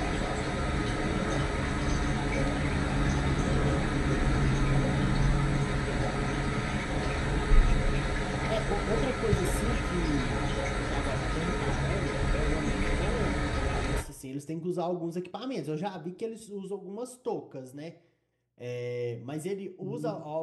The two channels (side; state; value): both; identical; correlation 1.00